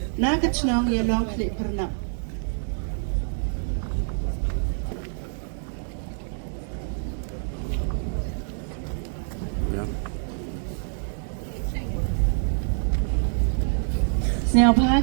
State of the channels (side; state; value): left; silent; 61 dB below the other